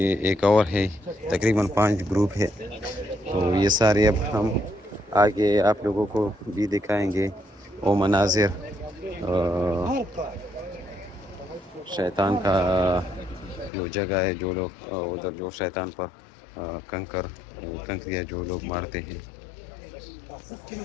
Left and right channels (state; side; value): drops out; right; at 13.7 s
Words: एक और है। तकरीबन 5 ग्रुप है। तो ये सारे अब हम आगे आप लोगों को भी दिखाएंगे वो मनाजिर शैतान का जो जगह है, जो लोग उधर जो शैतान पर कंकरिया जो लोग मारते हैं।